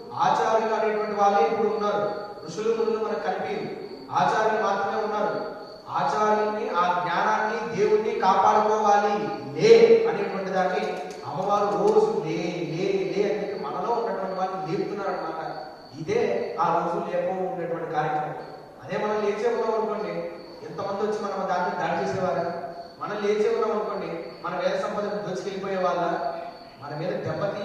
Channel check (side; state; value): both; identical; correlation 1.00